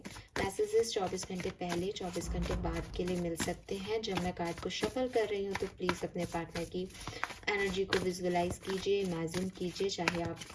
मैसेजेस 24 घंटे पहले 24 घंटे बाद के लिए मिल सकते हैं। जब मैं कार्ड को शफल कर रही हूँ तो प्लीज़ अपने पार्टनर की एनर्जी को विजुअलाइज कीजिए, इमेजिन कीजिए, चाहे आप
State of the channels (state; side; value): identical; both; correlation 1.00